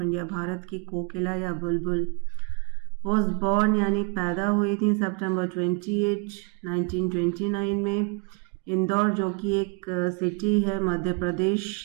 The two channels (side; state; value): left; quieter; 34.0 dB